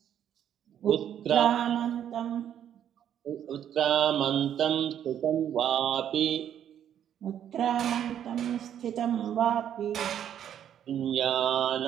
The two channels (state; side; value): quieter; left; 9.8 dB